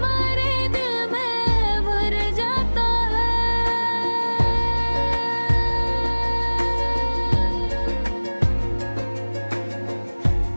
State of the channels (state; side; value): inverted; both; correlation -1.00